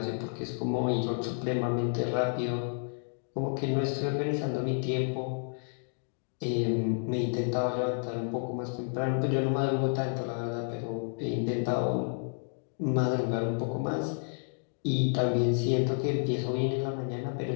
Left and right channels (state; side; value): silent; right; digital silence